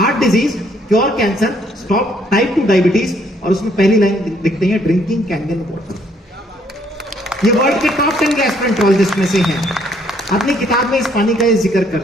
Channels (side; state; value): both; normal; correlation 0.67